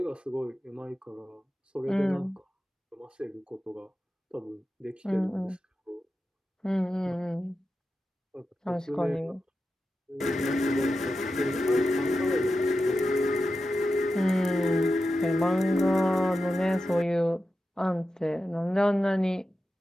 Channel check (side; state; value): both; normal; correlation 0.91